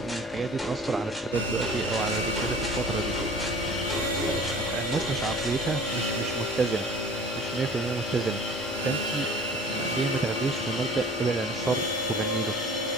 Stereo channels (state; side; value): normal; both; correlation 0.45